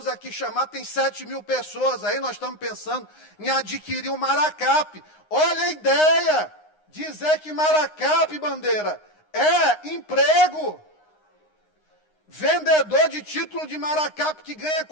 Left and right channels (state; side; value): late; right; 9.7 ms